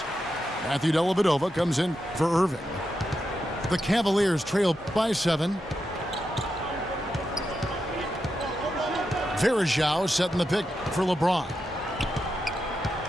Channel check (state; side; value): normal; both; correlation 0.87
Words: Matthew Dellavedova comes in for Irving. The Cavaliers trail by 7. Verajao setting the pick for LeBron.